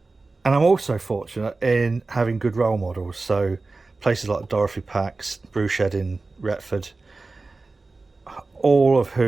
and I'm also fortunate in having good role models, so places like Dorothy Pack's Brew Shed in Retford, all of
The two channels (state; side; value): quieter; left; 3.6 dB